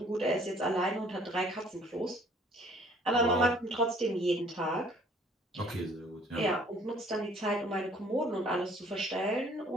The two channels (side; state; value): both; normal; correlation 0.57